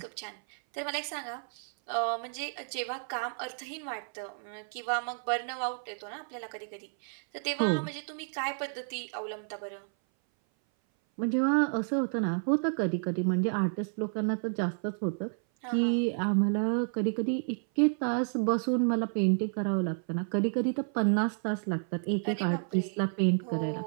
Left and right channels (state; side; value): silent; left; 57 dB below the other